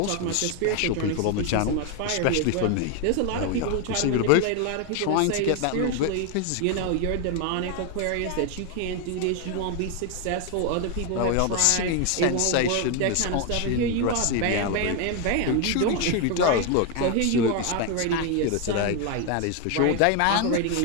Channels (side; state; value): both; different; correlation 0.01